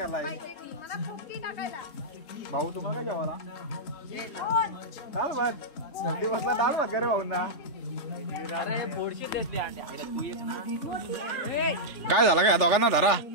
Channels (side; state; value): right; late; 3.4 ms